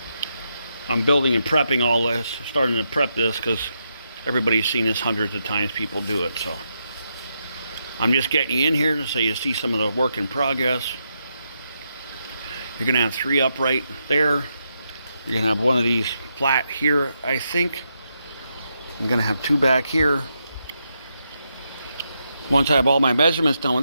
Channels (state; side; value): inverted; both; correlation -0.82